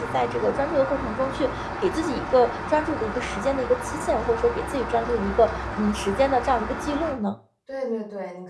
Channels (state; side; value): identical; both; correlation 1.00